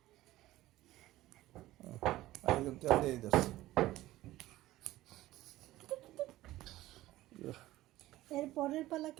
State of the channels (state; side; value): quieter; left; 16.2 dB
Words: আরেকজন তেল দিয়ে দিস। এর পরের পালা